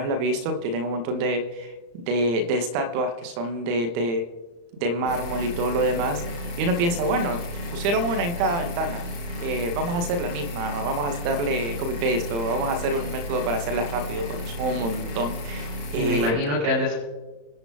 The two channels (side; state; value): left; late; 35 ms